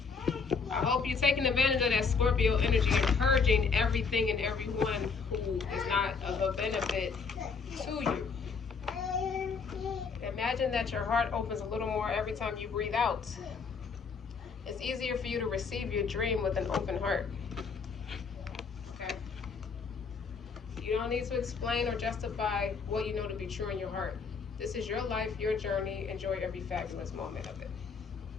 I hope you're taking advantage of that Scorpio energy and purging everything and everyone who is not of a benefit to you. Imagine that your heart opens a little more every time you breathe out. It's easier for you to receive your dream with an open heart. Okay? You don't need to explain or justify what you know to be true in your heart. This is your life, your journey. Enjoy every fabulous moment of it.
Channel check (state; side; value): quieter; right; 5.2 dB